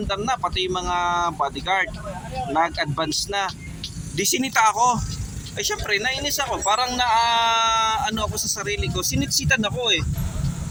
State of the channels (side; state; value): both; identical; correlation 1.00